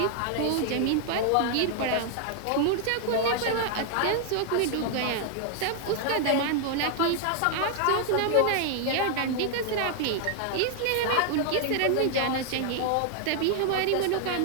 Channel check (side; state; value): both; different; correlation 0.00